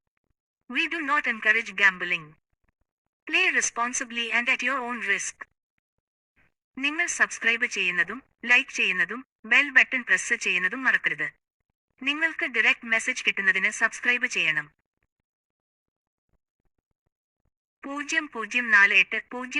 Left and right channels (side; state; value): both; identical; correlation 1.00